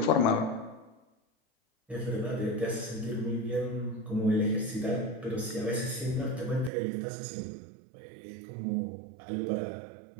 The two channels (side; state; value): left; drops out; at 6.7 s